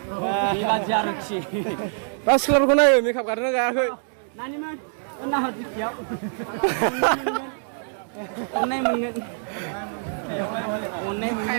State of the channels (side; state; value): left; silent; digital silence